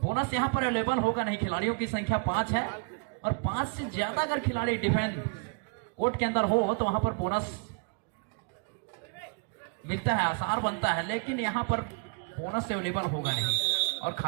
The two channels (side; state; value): left; quieter; 36.3 dB